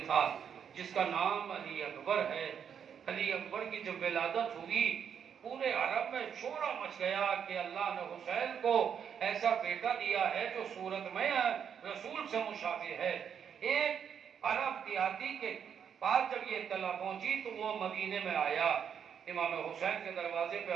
تھا، جس کا نام علی اکبر ہے۔ علی اکبر کی جب ولادت ہوئی پورے عرب میں شورا مچ گیا کہ اللہ نے حسین کو ایسا بیٹا دیا ہے جو صورت میں رسول سے مشابہ ہے۔ ایک عرب دیہاتی کے پاس جب یہ اطلاع پہنچی تو وہ مدینے میں آیا، امام حسین کے دروازے پہ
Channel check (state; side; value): quieter; left; 7.9 dB